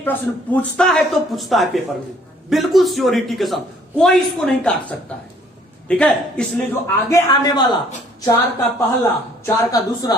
प्रश्न पूछता है तो पूछता है पेपर में, बिल्कुल श्योरिटी के साथ, कोई इसको नहीं काट सकता है, ठीक है। इसलिए जो आगे आने वाला 4 का पहला, 4 का दूसरा,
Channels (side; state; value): both; normal; correlation 0.60